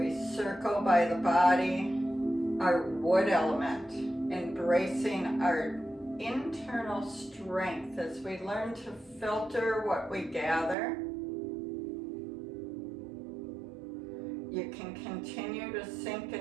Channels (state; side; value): drops out; left; at 10.8 s